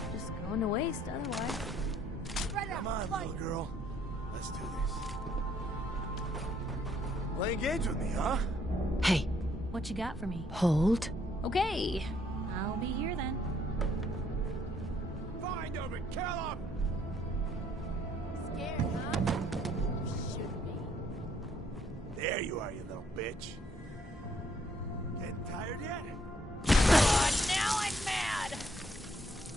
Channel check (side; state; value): both; normal; correlation 0.67